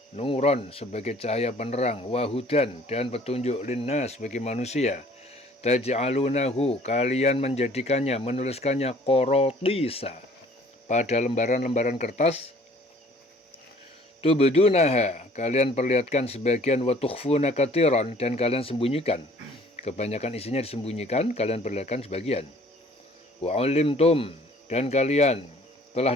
nuron, sebagai cahaya penerang, wahudan, dan petunjuk, linnas, bagi manusia, taj'alunahu, kalian menjadikannya, menuliskannya, qorotisa, pada lembaran-lembaran kertas, tubdunaha, kalian perlihatkan sebagian, wa tukhfuna katsiran, dan kalian sembunyikan. Kebanyakan isinya disembunyikan, kalian perlihatkan sebagian. Wa ulimtum, dan kalian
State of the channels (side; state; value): both; normal; correlation 0.54